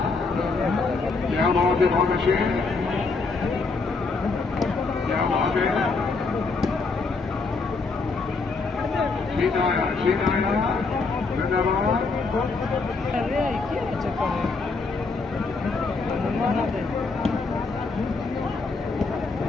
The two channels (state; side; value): quieter; right; 4.1 dB